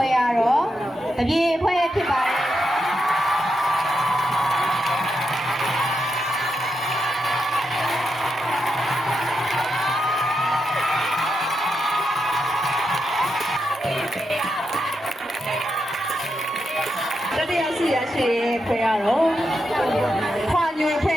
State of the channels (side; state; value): both; normal; correlation 0.85